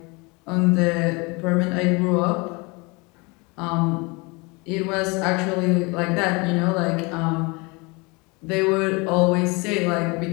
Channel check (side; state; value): right; quieter; 27.7 dB